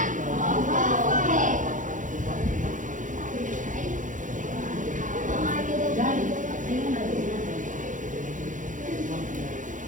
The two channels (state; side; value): late; left; 0.37 ms